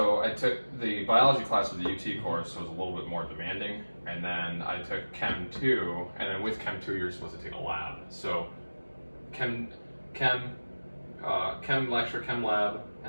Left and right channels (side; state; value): both; inverted; correlation -1.00